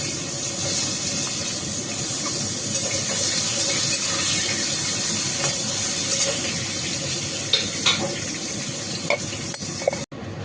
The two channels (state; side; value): identical; both; correlation 1.00